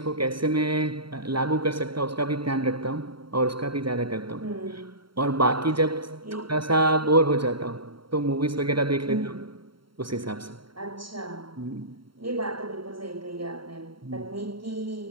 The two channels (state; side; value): late; left; 0.73 ms